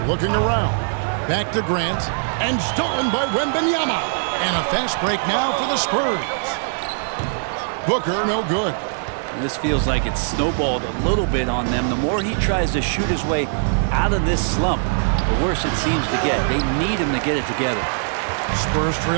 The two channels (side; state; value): left; silent; 58 dB below the other